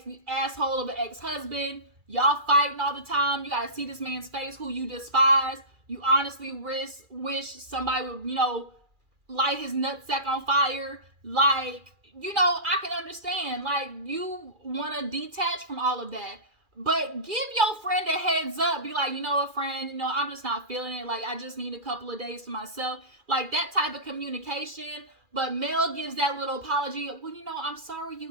asshole of an ex-husband. Y'all fighting all the time. You gotta see this man's face who you despise. You honestly wish somebody would, light his nutsack on fire. Like, I can understand. Like, you want to detach from all of that. But give your friend a heads up. Be like, friend, I'm just not feeling it. Like, I just need a couple of days to myself. Like, that type of communication. But Mel gives that little apology. Well, I'm sorry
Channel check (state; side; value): late; left; 2.4 ms